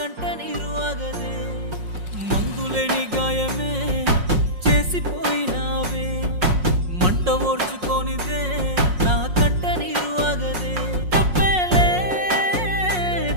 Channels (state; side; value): late; left; 5.5 ms